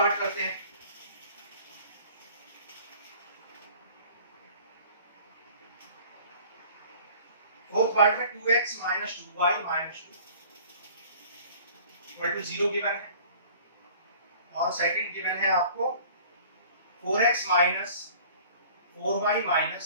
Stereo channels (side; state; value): both; inverted; correlation -0.49